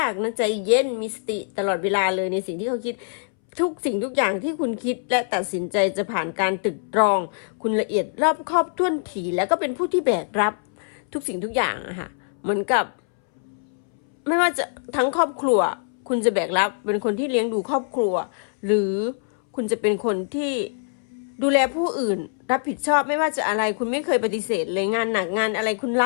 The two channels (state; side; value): silent; right; 63 dB below the other